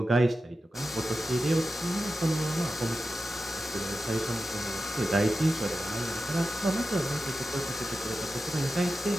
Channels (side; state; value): both; normal; correlation 0.92